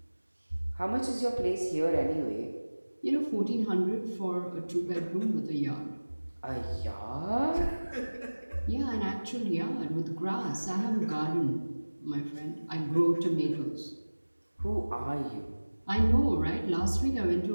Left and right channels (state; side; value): inverted; both; correlation -1.00